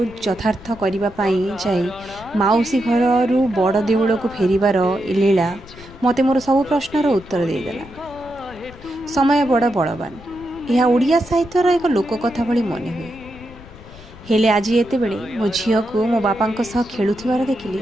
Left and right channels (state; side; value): noise; left; rumble, 19 dB below the sound